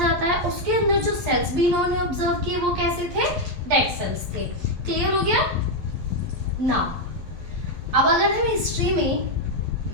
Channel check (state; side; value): late; left; 11 ms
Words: है. उसके अंदर जो सेल्स भी इन्होंने ऑब्जर्व किए वो कैसे थे? डेड सेल्स थे. क्लियर हो गया ना? अब अगर हम हिस्ट्री में